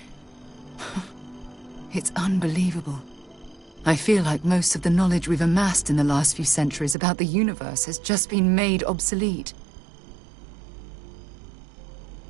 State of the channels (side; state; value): left; drops out; at 7.0 s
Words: It's unbelievable. I feel like most of the knowledge we've amassed in the last few centuries about the universe has just been made obsolete.